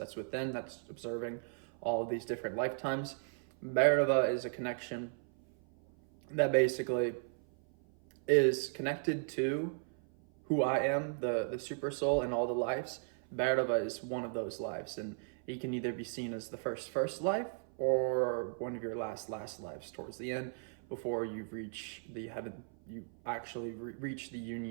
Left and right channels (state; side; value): silent; left; 54 dB below the other